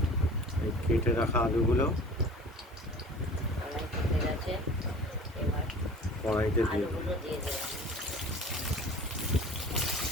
এই কেটে রাখা আলুগুলো কড়াই কেটে গেছে। এবার কড়াইতে দিয়ে দেবো। আলুগুলো দিয়ে দেবো।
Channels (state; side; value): normal; both; correlation 0.43